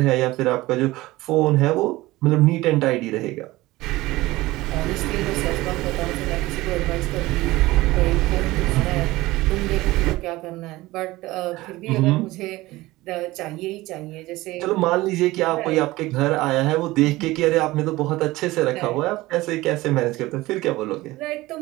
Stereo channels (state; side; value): quieter; left; 18.9 dB